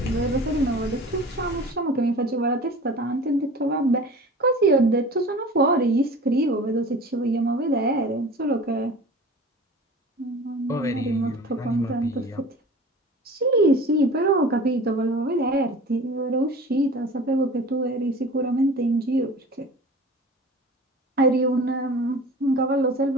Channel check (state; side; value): normal; both; correlation 0.40